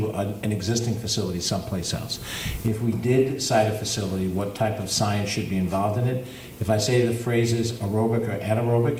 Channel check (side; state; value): both; identical; correlation 1.00